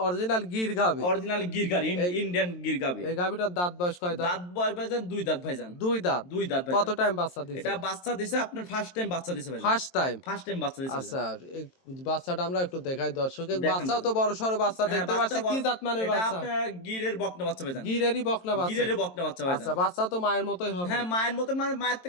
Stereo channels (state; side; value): late; right; 23 ms